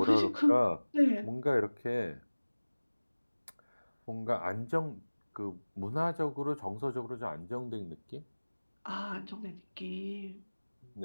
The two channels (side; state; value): both; inverted; correlation -1.00